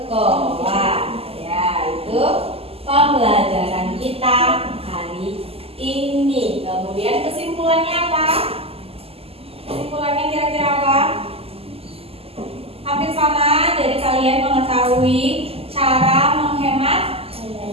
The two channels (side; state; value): left; late; 0.29 ms